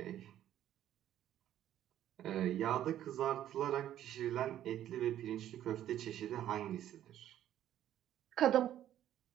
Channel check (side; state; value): left; quieter; 11.8 dB